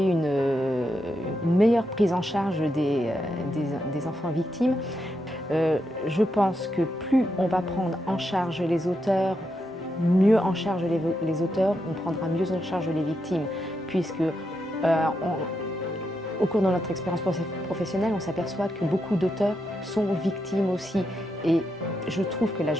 une meilleure prise en charge des enfants victimes. Je pense que plus on va prendre en charge les auteurs, mieux en charge les auteurs, on prendra mieux en charge les victimes, puisque au cours de notre expérience professionnelle, on s'aperçoit que beaucoup d'auteurs sont victimes aussi. Et je trouve que la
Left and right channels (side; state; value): both; normal; correlation 0.83